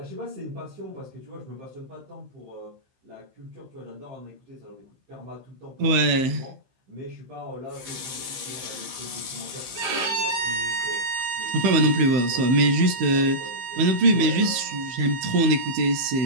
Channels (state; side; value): late; left; 15 ms